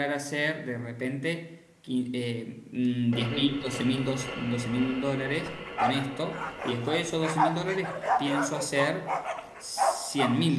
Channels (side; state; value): both; identical; correlation 1.00